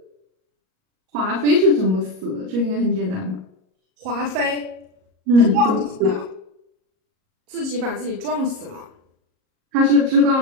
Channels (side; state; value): left; late; 38 ms